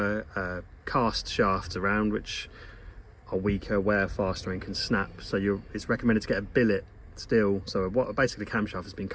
cast shafts around which are weaker, wear faster and can snap, so it's recommended to get a billet steel. So what basically camshaft has been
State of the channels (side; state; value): both; identical; correlation 1.00